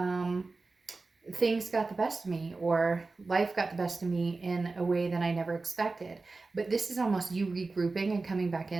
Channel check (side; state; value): left; quieter; 3.7 dB